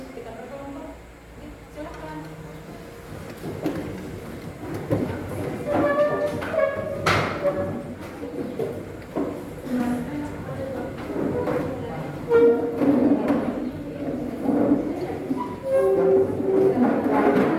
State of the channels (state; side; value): identical; both; correlation 1.00